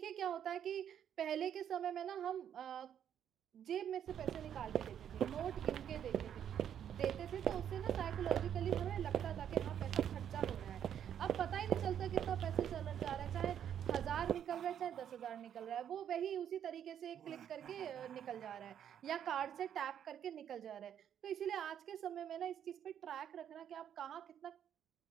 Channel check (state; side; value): quieter; left; 9.4 dB